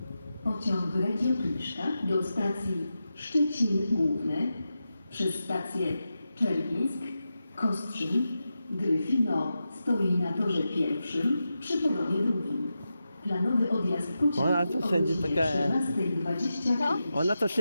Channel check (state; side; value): inverted; both; correlation -0.90